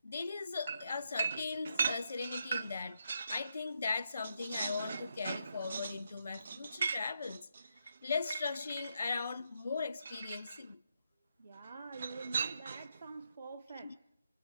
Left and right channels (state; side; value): inverted; both; correlation -0.81